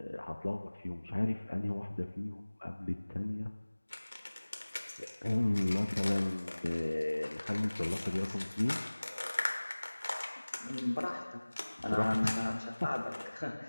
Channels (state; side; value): inverted; both; correlation -1.00